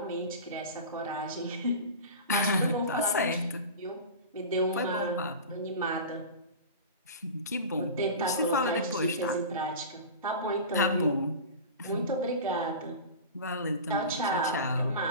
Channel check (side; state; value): both; inverted; correlation -0.31